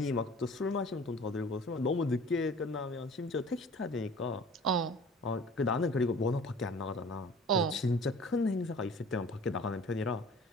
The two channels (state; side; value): normal; both; correlation 0.46